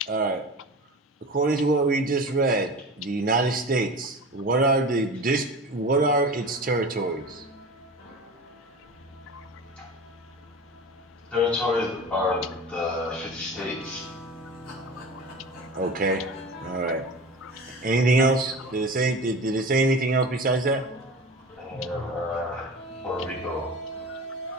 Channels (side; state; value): both; normal; correlation 0.34